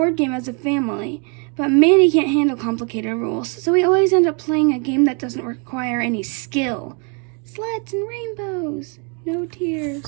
game as a family, but Manny can't handle complicated rules, so we always end up playing a game that doesn't require any skill. Sleds and rainbows, no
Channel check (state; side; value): quieter; left; 36.4 dB